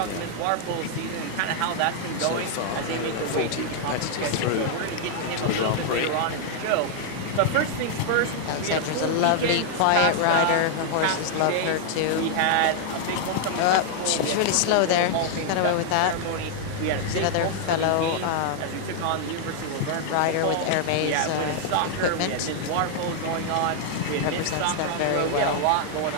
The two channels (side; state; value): both; different; correlation 0.00